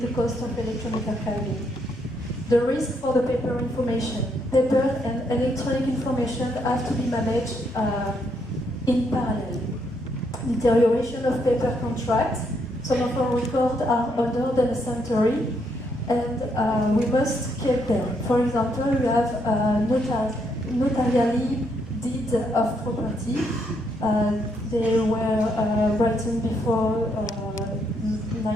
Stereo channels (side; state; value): both; normal; correlation 0.75